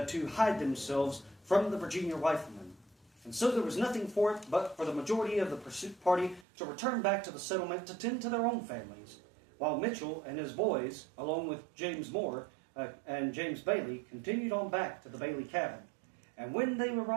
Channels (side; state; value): left; drops out; at 6.5 s